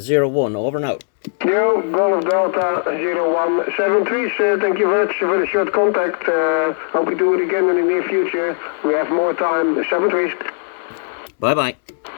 Over now. Yo, Golf Delta 01. 73s, thank you very much for the short contact. Hope we do it again in the near future. We have more time. 73s. Bye-bye.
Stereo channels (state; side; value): silent; right; digital silence